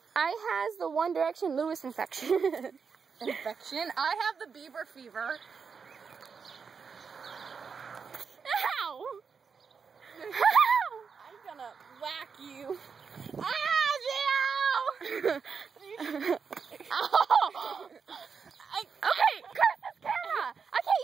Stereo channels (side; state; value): left; quieter; 5.8 dB